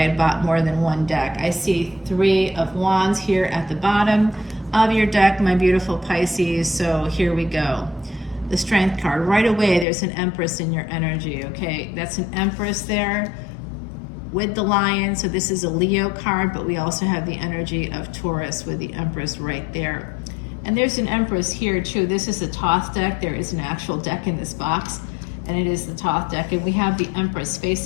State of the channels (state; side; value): drops out; right; at 9.9 s